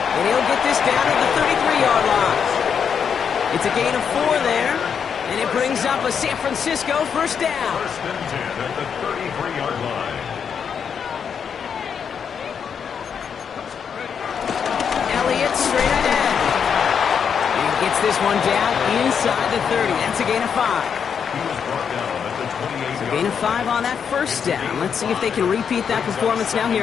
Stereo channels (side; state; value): right; quieter; 7.1 dB